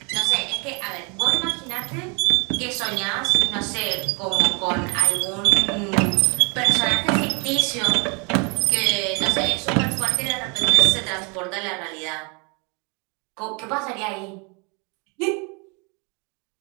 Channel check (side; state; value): left; quieter; 32.4 dB